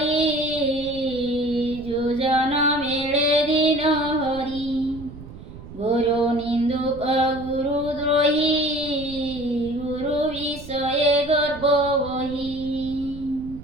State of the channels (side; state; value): right; noise; rumble, 15 dB below the sound